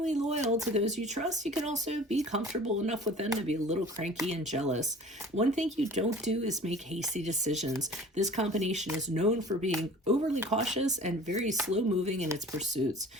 loyal to those you trust, you can also be comfortable enough with them to be a little cranky and jealous. One thing you don't do is make hasty decisions. This combination is known for being overly cautious and very slow-moving in its pursuits.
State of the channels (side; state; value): both; normal; correlation 0.45